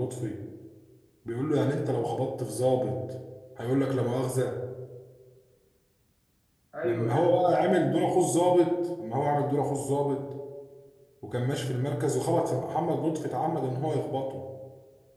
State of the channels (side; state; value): both; identical; correlation 1.00